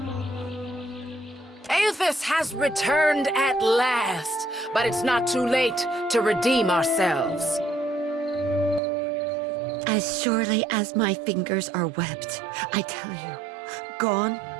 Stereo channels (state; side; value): drops out; left; at 8.8 s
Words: Aethys has returned at last, but it's not too late to redeem ourselves. As surely as my fingers are webbed, I tell you, gone,